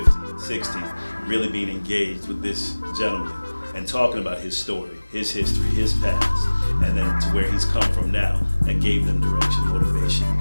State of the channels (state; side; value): inverted; both; correlation -1.00